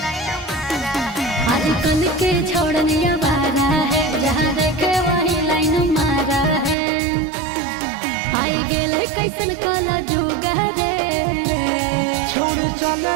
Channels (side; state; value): left; drops out; at 6.8 s